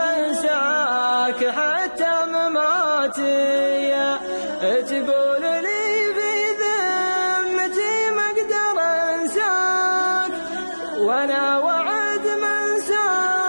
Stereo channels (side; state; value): both; inverted; correlation -1.00